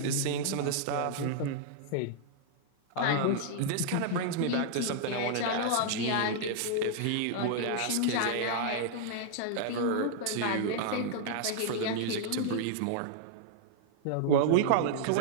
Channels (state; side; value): different; both; correlation -0.01